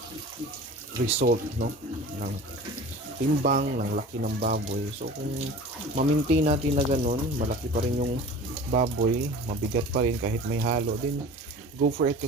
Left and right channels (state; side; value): normal; both; correlation 0.39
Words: result, no, ng timbang, ng laki ng baboy. So kung ma-maintain natin na ganun, malaki pa rin yung baboy, mabigat pa rin kahit may halo, then go for it,